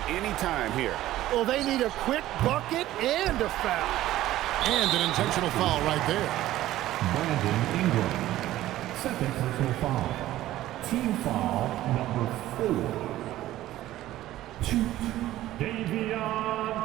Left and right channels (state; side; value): quieter; left; 14.7 dB